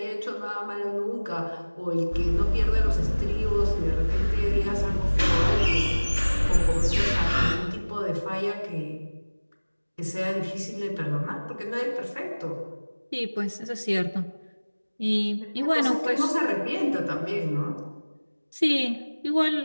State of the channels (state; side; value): inverted; both; correlation -1.00